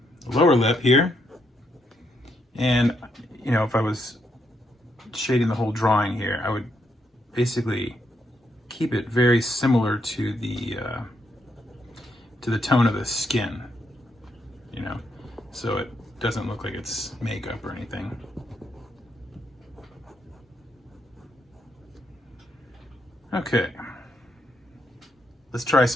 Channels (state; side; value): normal; both; correlation 0.78